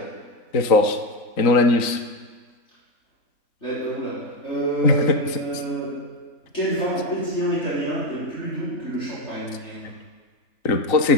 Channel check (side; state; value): right; late; 3.9 ms